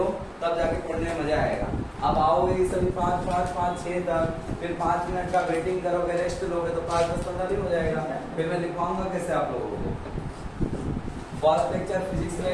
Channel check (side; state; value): both; identical; correlation 1.00